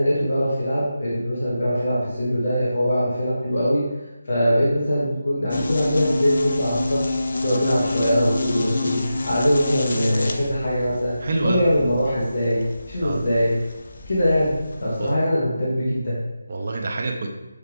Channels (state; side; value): inverted; both; correlation -0.90